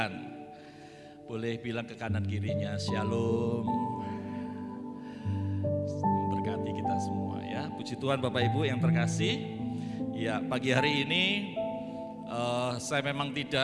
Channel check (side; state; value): both; identical; correlation 1.00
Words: Boleh bilang ke kanan kirinya shalom. Berkati kita semua ya. Puji Tuhan Bapak Ibu yang terkasih. Ya, pagi hari ini saya memang